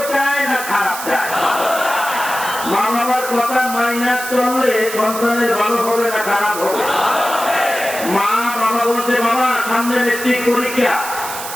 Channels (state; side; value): noise; right; hiss, 9 dB below the sound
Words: চায় না খারাপ চায়? মা বাবার কথা মাইনা চললে সন্তানের ভালো হবে না খারাপ হবে? মা বাবা বলছে বাবা সামনে মেট্রিক পরীক্ষা,